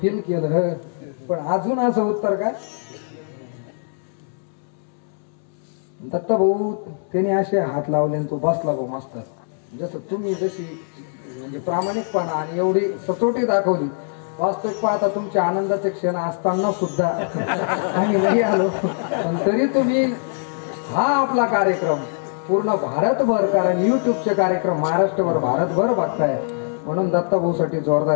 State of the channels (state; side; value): silent; right; 64 dB below the other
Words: केलं, पण अजून असं उत्तर काय. दत्त भाऊ त्याने असे हात लावले आणि तो बसला भाऊ मास्तर. जसं तुम्ही जशी म्हणजे प्रामाणिकपणा आणि एवढी सचोटी दाखवली वास्तविक पाहता तुमचे आनंदाचे क्षण असताना सुद्धा आम्ही नाही आलो, पण तरी तुम्ही हा आपला कार्यक्रम पूर्ण भारतभर, कारण युट्यूबचे कार्यक्रम महाराष्ट्रभर भारतभर बघताय, म्हणून दत्ताभाऊ साठी